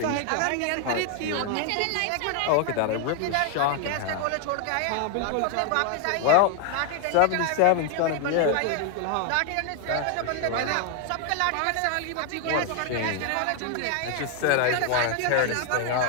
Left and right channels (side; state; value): both; different; correlation 0.01